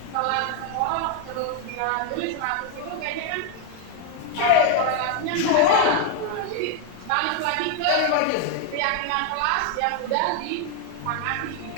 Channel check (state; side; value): different; both; correlation 0.00